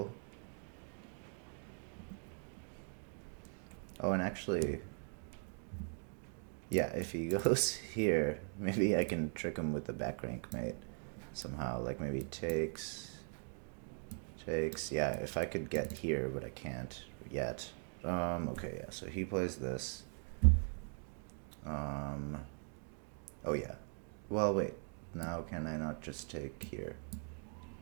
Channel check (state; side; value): silent; left; 51 dB below the other